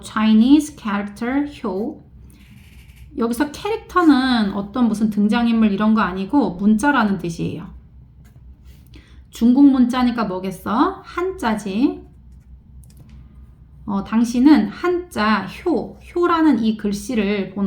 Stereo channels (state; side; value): identical; both; correlation 1.00